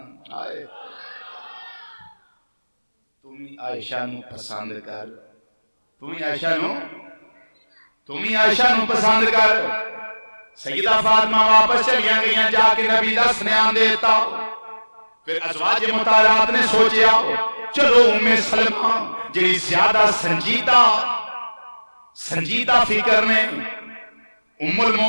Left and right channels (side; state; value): both; inverted; correlation -1.00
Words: آئے تمہیں عائشہ نو پسند کر تمہیں عائشہ نو پسند کر سیدہ فاطمہ واپس چلیاں گئیاں جا کے نبی دا سنیان دیتا پھر ازواج مطہرات نے سوچیا چلو ام سلمہ جنہی زیادہ سنجیدہ فکر نے ام